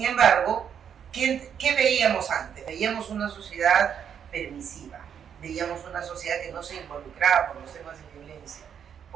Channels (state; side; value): quieter; left; 8.2 dB